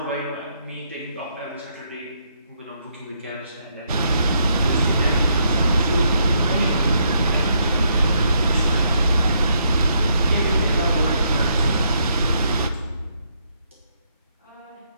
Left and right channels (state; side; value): inverted; both; correlation -0.74